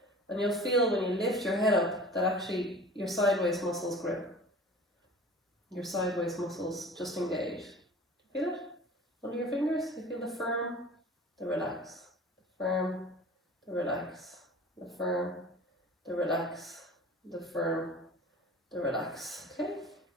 and you'll feel when you lift your head up that actually your side waist muscles grip. Your side waist muscles just engage. Feel it? Under your fingers? You feel the firm, the relax. The firm, the relax. The firm, the relax. the firm, the relax, okay?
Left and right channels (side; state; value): both; normal; correlation 0.41